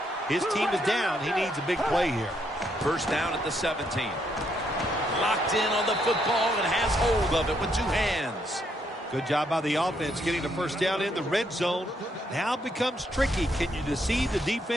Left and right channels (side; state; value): both; normal; correlation 0.74